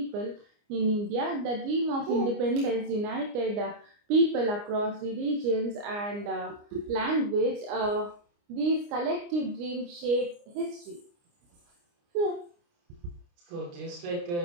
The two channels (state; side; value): late; left; 29 ms